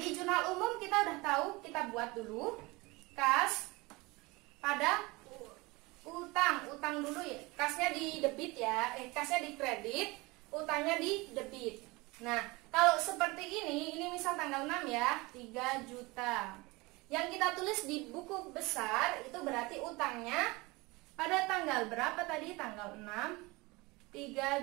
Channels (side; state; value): left; quieter; 23.7 dB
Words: jurnal umum kita udah tahu, kita buat dulu kas pada utang dulu ya. Kasnya di debit ya, kasnya di kredit, utangnya di debit. Nah, kalau seperti ini misal tanggal 6 ya, 3 juta. Yang kita tulis di buku besar itu berarti utangnya pada tanggal berapa tadi? Tanggal 6,